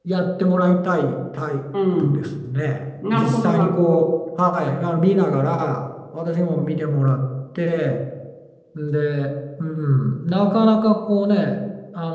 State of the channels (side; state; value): both; identical; correlation 1.00